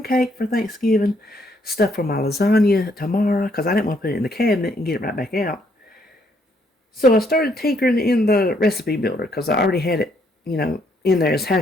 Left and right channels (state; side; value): normal; both; correlation 0.70